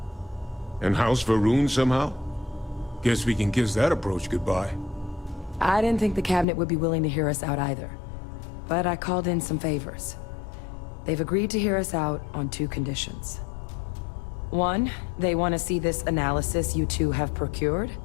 And House Varun somehow? Guess we can kiss that approach goodbye. I didn't think the Cabinet would be willing to hear us out either. But I called in some favors. They've agreed to hear us out on two conditions. One, they want to see this analysis you two have procured.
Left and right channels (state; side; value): drops out; right; at 6.5 s